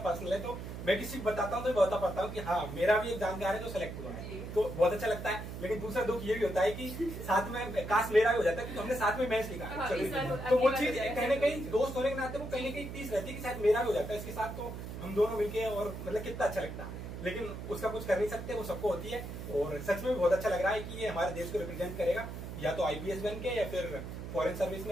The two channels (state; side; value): noise; right; hum, 8 dB below the sound